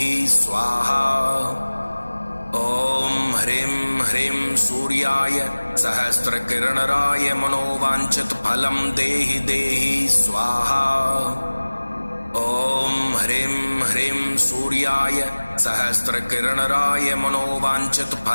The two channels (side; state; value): both; inverted; correlation -1.00